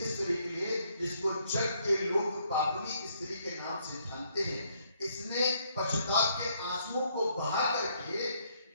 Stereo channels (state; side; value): inverted; both; correlation -0.70